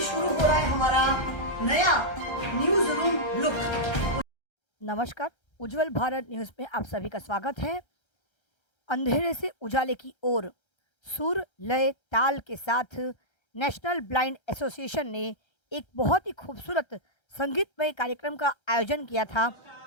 शुरू हो रहा है हमारा नया न्यूज रूम लुक। नमस्कार, उज्जवल भारत न्यूज में आप सभी का स्वागत है। अंधेरे से उजाले की ओर सुर लय ताल के साथ नेशनल ब्लाइंड एसोसिएशन ने एक बहुत ही खूबसूरत संगीतमय कार्यक्रम का आयोजन किया था।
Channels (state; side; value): late; right; 1.3 ms